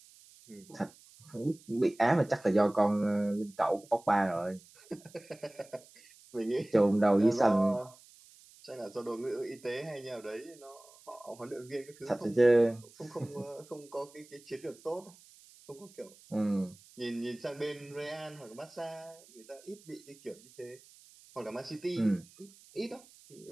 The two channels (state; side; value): noise; right; hiss, 24 dB below the sound